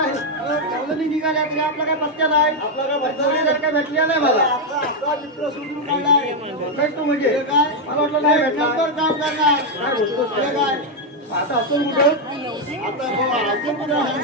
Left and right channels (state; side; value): normal; both; correlation 0.02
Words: कवलनी निघाल्या तुला आपला काय पत्त्या नाही आपला काय पत्ता काय भेटल्या नाही मला आपला मित्र सुधरून काढलाय भेटतो म्हणजे काय मला वाटलं नाही भेटणार तर काम करणार काय बोलतोस तुला काय आता असं कुठं आता अजून कुठं